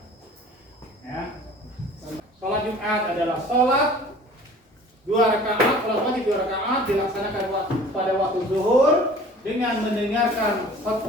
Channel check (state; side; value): normal; both; correlation 0.47